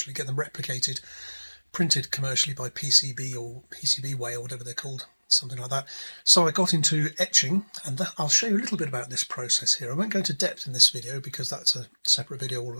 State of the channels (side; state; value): both; inverted; correlation -1.00